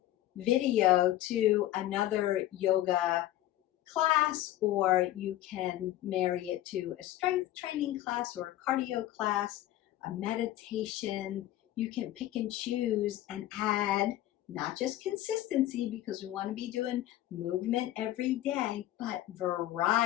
video to another yoga class, or you can marry it to a strength training class or a cardio class, a meditation. You can pick and choose and add not just consistency, because we want to be doing movement every day, but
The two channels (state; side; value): quieter; right; 14.3 dB